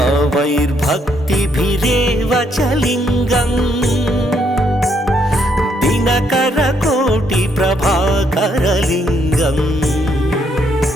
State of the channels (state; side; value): normal; both; correlation 0.73